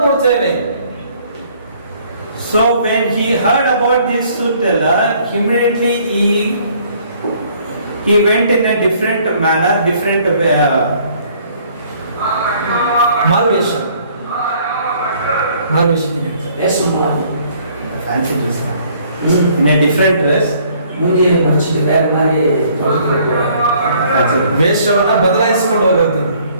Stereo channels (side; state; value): both; inverted; correlation -0.61